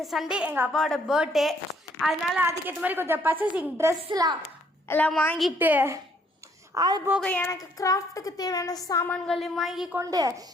சண்டே எங்கள் அப்பாவோட பர்த்டே. அதனால் அதுக்கேற்ற மாதிரி கொஞ்சம் பர்ச்சேசிங் ட்ரெஸ்லாம் எல்லாம் வாங்கிட்டு, அது போக எனக்கு கிராஃப்ட்டுக்கு தேவையான சாமான்களையும் வாங்கி கொண்டு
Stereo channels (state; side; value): normal; both; correlation 0.66